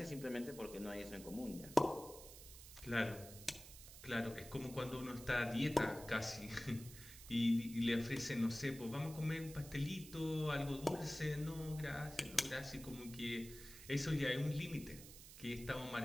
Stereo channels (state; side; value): noise; right; hiss, 15 dB below the sound